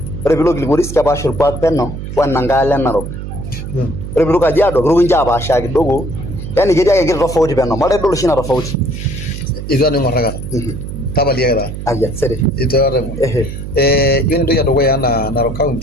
Ore piilo Kilgoris kepaasha orkuak peno wenankae alo e Narok. Ore piilo Kajiado kiroku ninche apaashaa kidogo. Yani ketii ake enkiti tofauti peno. Maata idol oshi ina tofauti. Itu aning' aikata. Tapaliaki taa. Aya, sere. Itu aning'. Yiolo entoki edukuya enaa Narok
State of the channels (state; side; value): noise; right; hum, 8 dB below the sound